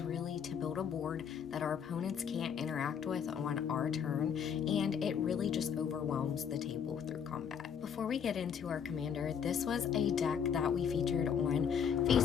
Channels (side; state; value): right; quieter; 7.6 dB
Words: really to build a board that our opponents can't interact with on our turn, and it really just overwhelms the table through combat. Before we get into our commander, this was a deck that we featured on